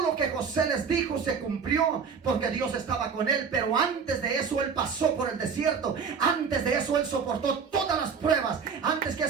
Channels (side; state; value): left; quieter; 6.1 dB